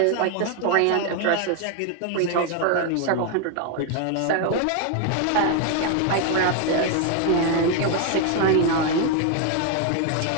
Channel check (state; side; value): different; both; correlation 0.01